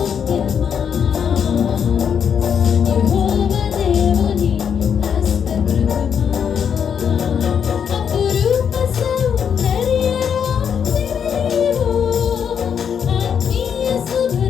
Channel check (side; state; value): right; quieter; 7.6 dB